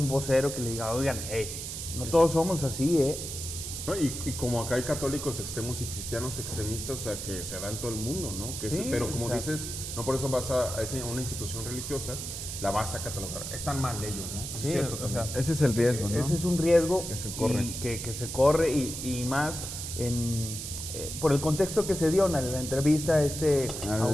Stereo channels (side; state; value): right; noise; hiss, 6 dB below the sound